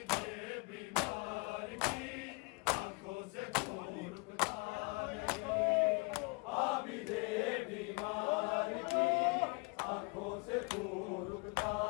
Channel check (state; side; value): quieter; right; 29.8 dB